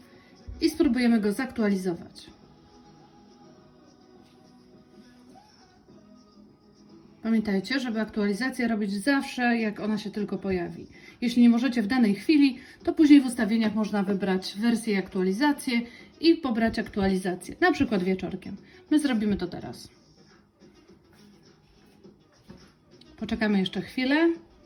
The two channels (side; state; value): both; identical; correlation 1.00